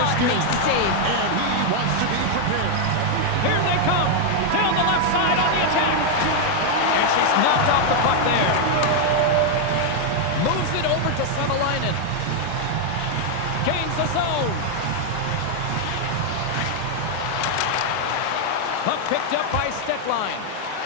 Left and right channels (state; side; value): different; both; correlation 0.00